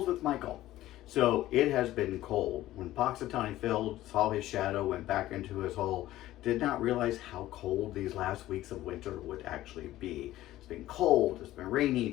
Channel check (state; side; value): quieter; right; 15.0 dB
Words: with Michael. So it has been cold. When Poxitani filled, saw his shadow, went back into his hole, did not realize how cold these last weeks of winter would actually be. It's been cold, it's been rainy,